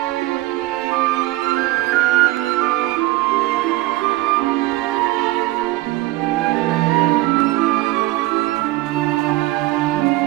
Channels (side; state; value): left; quieter; 18.6 dB